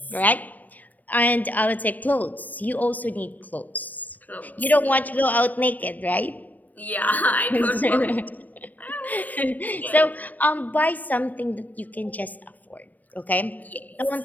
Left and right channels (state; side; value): late; right; 0.081 ms